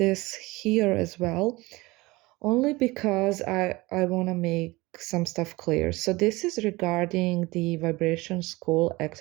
here as well only because I want to make some stuff clear. So this is regarding the vibration school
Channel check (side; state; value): left; quieter; 21.7 dB